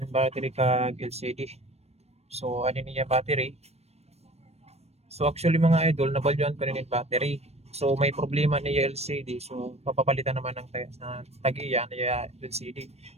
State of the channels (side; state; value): left; late; 0.31 ms